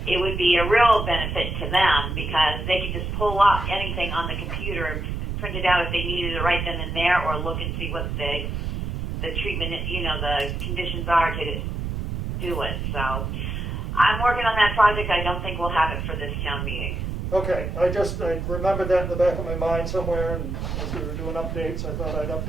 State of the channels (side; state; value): right; noise; rumble, 3 dB below the sound